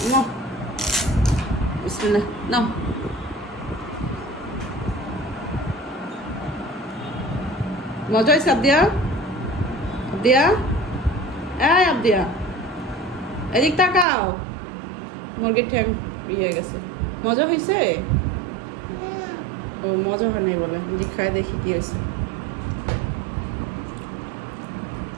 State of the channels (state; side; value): drops out; left; at 14.1 s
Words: না বিসমিল্লাহ নাও। মজা হয়েছে আবদিয়া? আবদিয়া, এই আবদিয়া, এদিক তাকাও। মুরগির ঠ্যাং ইয়ে গেছে। মজা হয়েছে? ও মজা হয় নাই বলে, যে খাই দেখি কি হয়েছে।